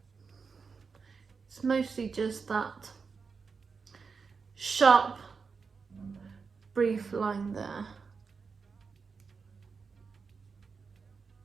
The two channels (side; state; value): left; quieter; 5.2 dB